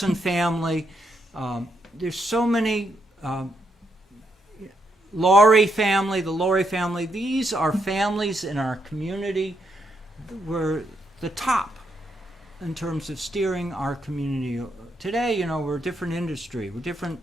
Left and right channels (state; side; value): normal; both; correlation 0.78